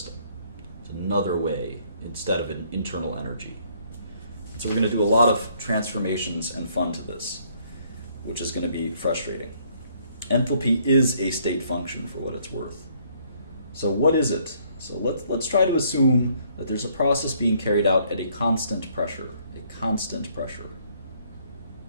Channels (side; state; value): both; inverted; correlation -0.66